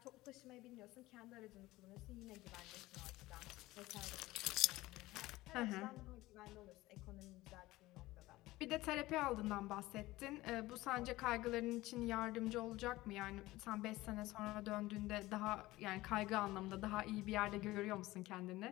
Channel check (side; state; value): right; quieter; 18.3 dB